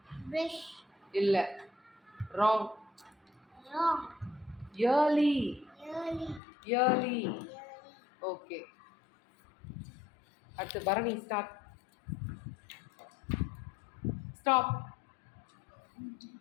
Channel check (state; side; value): drops out; right; at 6.4 s